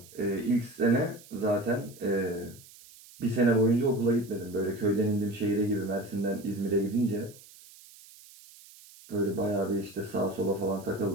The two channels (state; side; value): noise; right; hiss, 22 dB below the sound